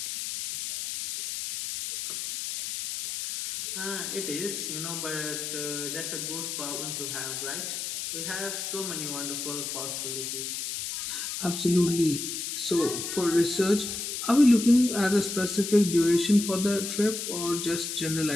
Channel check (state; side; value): noise; left; hiss, 4 dB below the sound